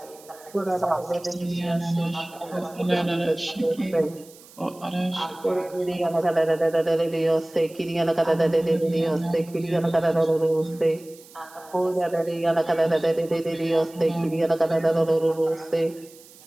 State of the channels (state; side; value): noise; right; hiss, 23 dB below the sound